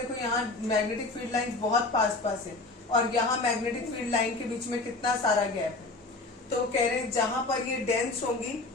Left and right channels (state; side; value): quieter; right; 3.3 dB